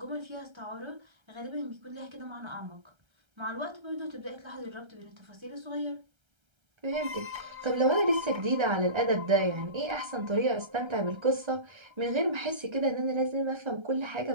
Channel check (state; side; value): late; left; 1.3 ms